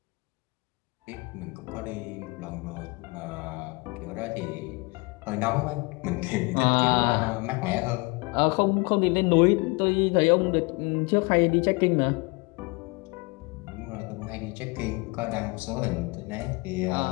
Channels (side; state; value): right; quieter; 28.0 dB